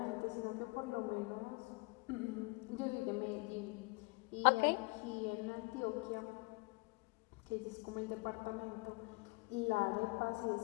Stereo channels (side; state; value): right; quieter; 27.4 dB